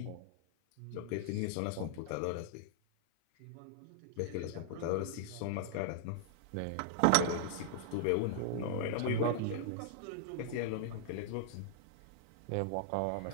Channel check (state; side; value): different; both; correlation -0.01